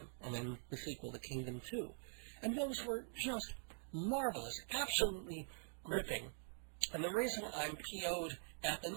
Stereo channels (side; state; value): left; silent; digital silence